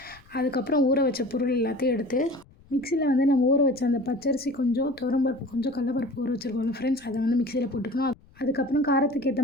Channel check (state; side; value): noise; left; rumble, 27 dB below the sound